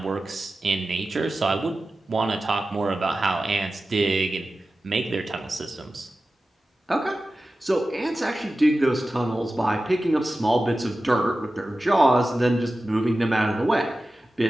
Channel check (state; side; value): normal; both; correlation 0.94